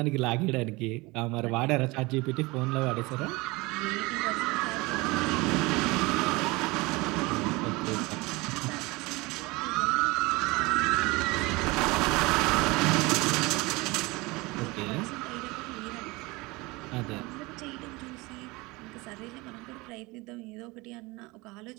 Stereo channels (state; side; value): quieter; left; 23.6 dB